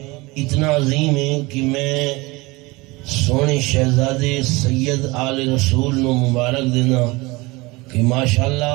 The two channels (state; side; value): quieter; left; 23.2 dB